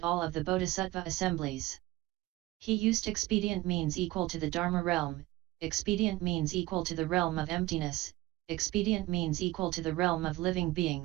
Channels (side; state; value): left; quieter; 18.2 dB